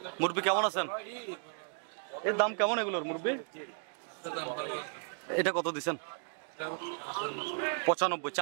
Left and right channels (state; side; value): silent; left; 55 dB below the other